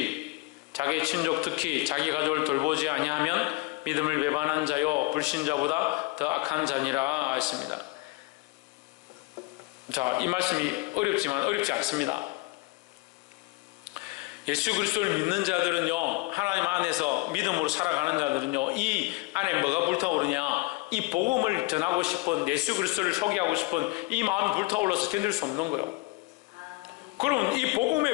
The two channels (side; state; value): right; quieter; 23.8 dB